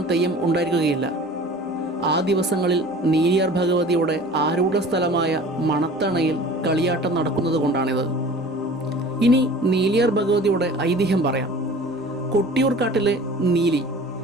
തെയ്യം ഉണ്ടായിരിക്കുകയില്ല. ആ ദിവസങ്ങളിൽ നീലിയാർ ഭഗവതിയുടെ ആരൂഢ സ്ഥലമായ മണത്തണയിൽ കളിയാട്ടം നടക്കുന്നത് കൊണ്ടാണിത്. ഇനി നീലിയാർ ഭഗവതിയുടെ ഐതിഹ്യം പറയാം. കൊട്ടിയൂർ കാട്ടിലെ നീലി,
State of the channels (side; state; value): both; normal; correlation 0.43